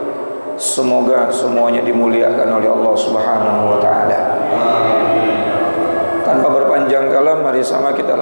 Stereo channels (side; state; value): both; inverted; correlation -1.00